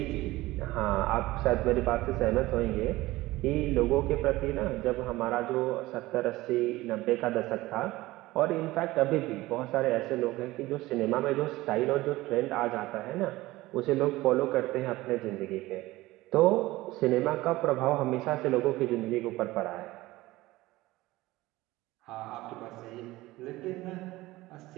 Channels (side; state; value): left; quieter; 18.6 dB